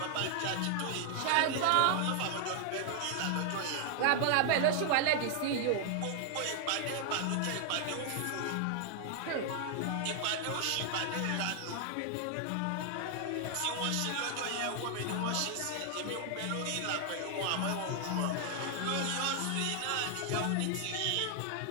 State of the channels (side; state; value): both; different; correlation 0.00